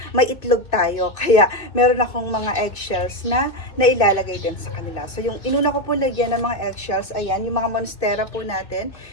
may itlog tayo. Kaya meron akong mga eggshells na nailalagay din sa kanila. So yung inuna ko po lagyan ng mga eggshells, ayan, yung mga monstera po natin,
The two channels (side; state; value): right; late; 2.6 ms